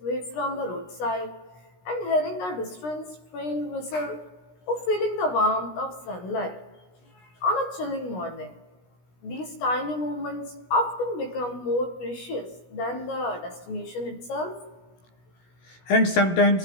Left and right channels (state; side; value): late; right; 17 ms